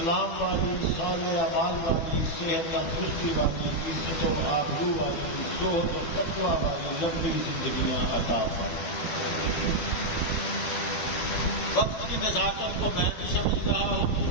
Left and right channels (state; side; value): late; right; 12 ms